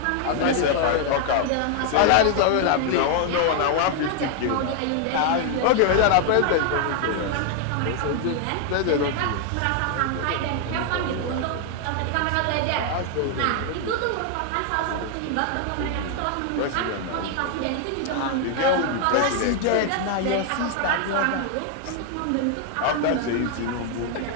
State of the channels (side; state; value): both; different; correlation 0.00